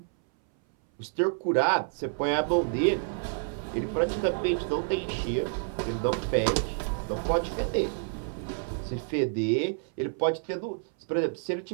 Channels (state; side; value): silent; left; 59 dB below the other